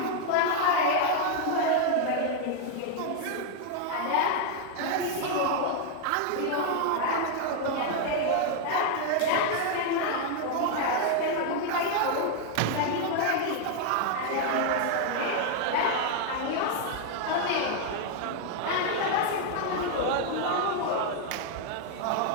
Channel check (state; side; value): different; both; correlation 0.00